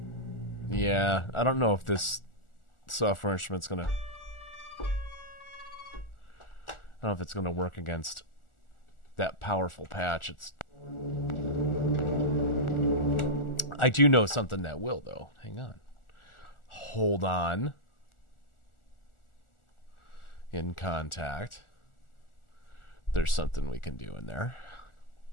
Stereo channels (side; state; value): right; late; 1.4 ms